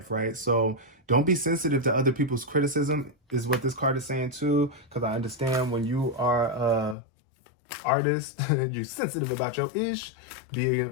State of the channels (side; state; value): right; drops out; at 7.0 s